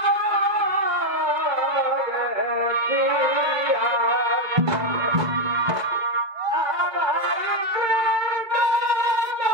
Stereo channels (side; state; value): left; late; 2.0 ms